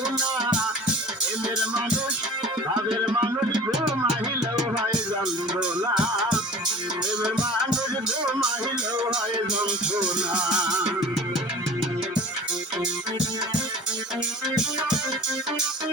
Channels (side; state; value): both; normal; correlation 0.41